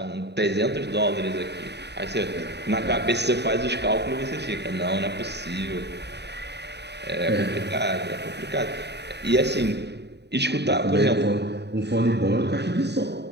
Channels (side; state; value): left; late; 0.49 ms